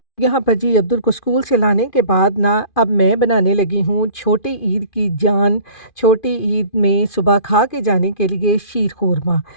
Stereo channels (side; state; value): right; late; 2.5 ms